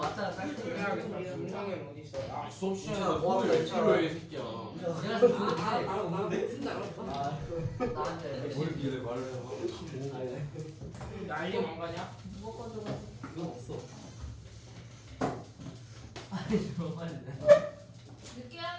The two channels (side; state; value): both; identical; correlation 1.00